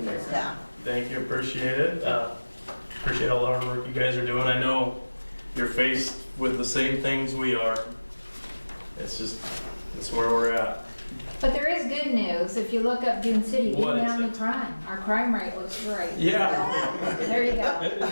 Yeah. Thank you, appreciate it. Appreciate all the hard work you guys are doing. I know you're faced with the same things we are. It's where we're at. But there is good news. If you look up Dune City, What even is down the it? crime, our crime rate looks great. Yeah. There you go.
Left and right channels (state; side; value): inverted; both; correlation -1.00